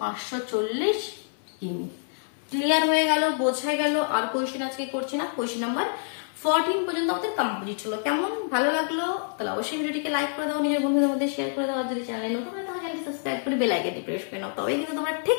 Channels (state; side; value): silent; right; 60 dB below the other